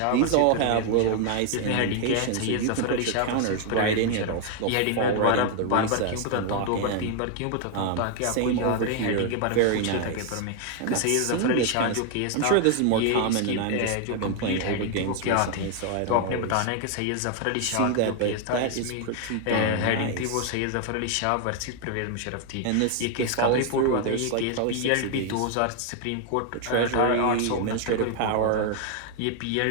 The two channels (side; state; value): both; different; correlation 0.00